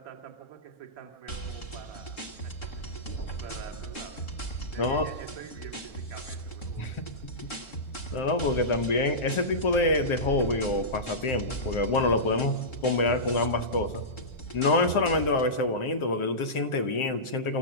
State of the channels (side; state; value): right; late; 1.4 ms